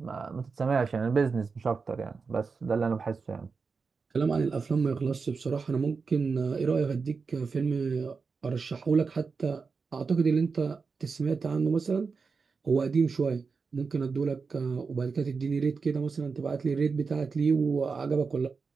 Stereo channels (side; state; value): left; quieter; 4.9 dB